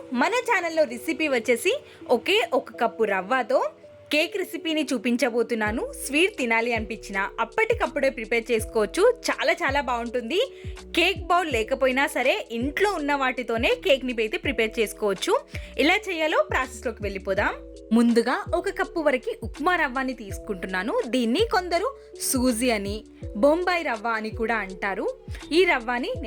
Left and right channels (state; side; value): identical; both; correlation 1.00